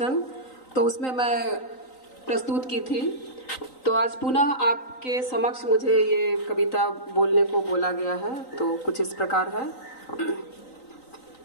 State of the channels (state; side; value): late; right; 3.9 ms